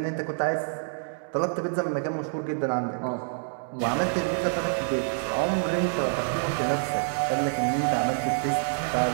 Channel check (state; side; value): silent; left; digital silence